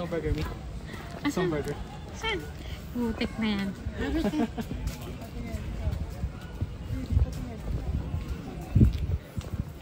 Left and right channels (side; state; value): both; identical; correlation 1.00